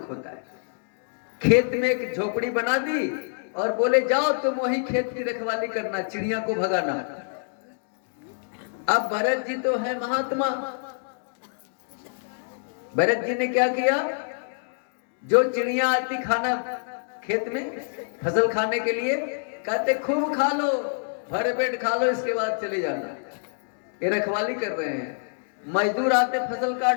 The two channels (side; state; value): right; silent; digital silence